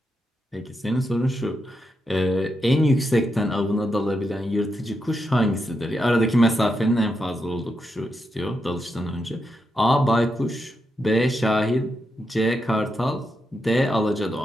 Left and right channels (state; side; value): normal; both; correlation 0.84